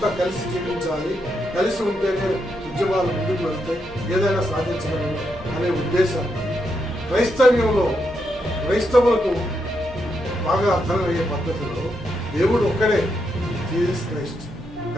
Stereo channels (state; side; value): normal; both; correlation 0.81